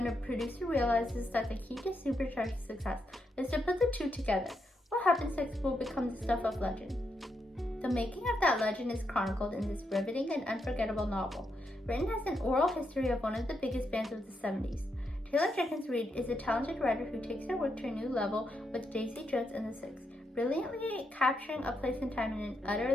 a producer realizes that the key to supercharged success is to put the two together. What happens next will become the stuff of legend. The making of that legend is chronicled in this riveting and unforgettable novel, written as an oral history of one of the biggest bands of the 70s. Taylor Jenkins Reid is a talented writer who takes her work to a new level with Daisy Jones and the Six, brilliantly capturing a place and time in an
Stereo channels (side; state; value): both; normal; correlation 0.82